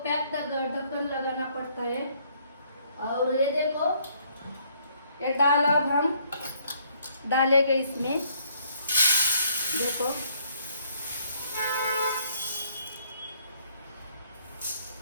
पैक ढक्कन लगाना पड़ता है। और ये देखो ये दाल अब हम डालेंगे इसमें, देखो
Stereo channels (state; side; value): inverted; both; correlation -0.66